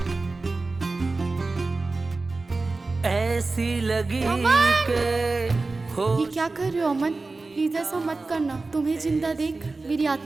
ऐसी लगी के हो। ये क्या कर रहे हो अमन? प्लीज ऐसा मत करना। तुम्हें जिंदा देख मेरी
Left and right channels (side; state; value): left; quieter; 3.6 dB